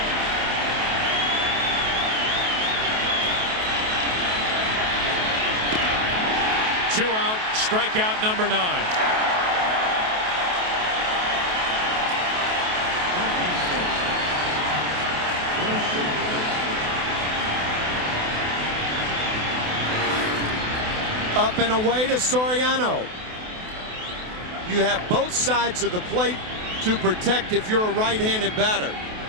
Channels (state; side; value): late; left; 28 ms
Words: Two out, strikeout number 9. Up and away to Soriano. You have both sides of the plate to protect if you're a right-handed batter.